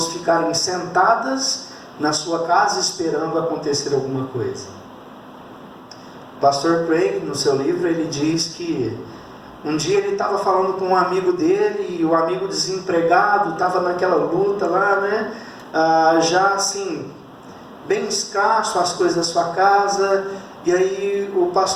ficarem sentadas na sua casa esperando acontecer alguma coisa. O pastor Craig, no seu livro, ele diz que um dia ele estava falando com um amigo dele, e o amigo desempregado estava naquela luta lá, né? Já assim, bem escasso as coisas da sua casa. E aí o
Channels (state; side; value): identical; both; correlation 1.00